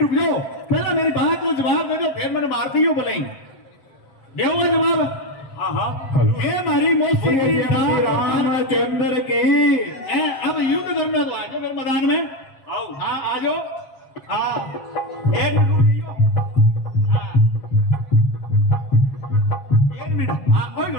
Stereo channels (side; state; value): right; late; 7.5 ms